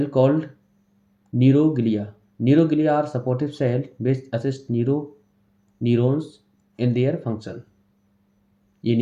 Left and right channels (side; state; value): both; identical; correlation 1.00